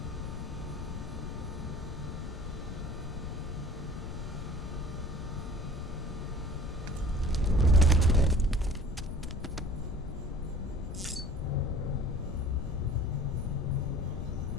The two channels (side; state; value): left; noise; rumble, 7 dB below the sound